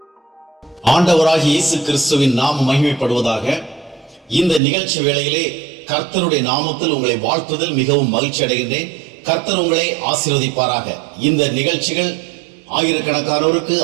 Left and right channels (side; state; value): left; drops out; at 4.6 s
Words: ஆண்டவராகிய இயேசு கிறிஸ்துவின் நாமம் மகிமைப்படுவதாக. இந்த நிகழ்ச்சி வேளையிலே கர்த்தருடைய நாமத்தில் உங்களை வாழ்த்துதல் மிகவும் மகிழ்ச்சி அடைகின்றேன். கர்த்தர் உங்களை ஆசீர்வதிப்பாராக. இந்த நிகழ்ச்சிகள் ஆயிரக்கணக்கானோருக்கு